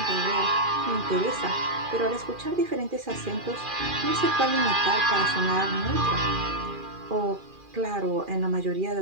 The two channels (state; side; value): late; left; 2.4 ms